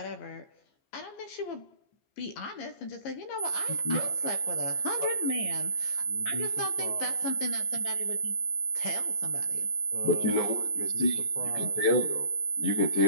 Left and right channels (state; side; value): late; right; 15 ms